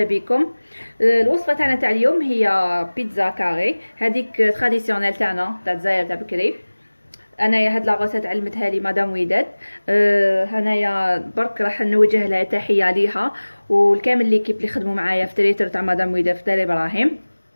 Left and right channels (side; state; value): both; inverted; correlation -1.00